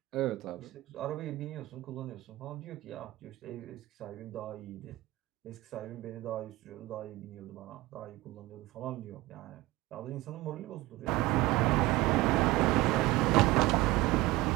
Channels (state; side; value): quieter; left; 18.8 dB